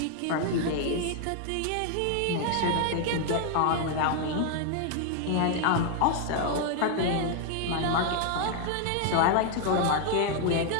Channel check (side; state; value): both; different; correlation 0.00